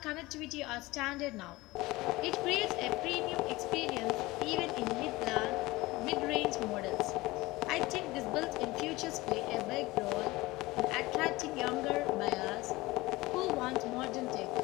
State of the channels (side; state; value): right; quieter; 20.3 dB